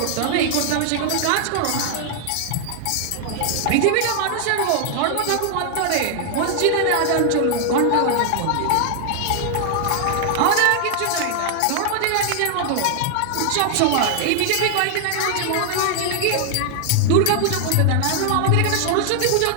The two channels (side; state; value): both; different; correlation 0.00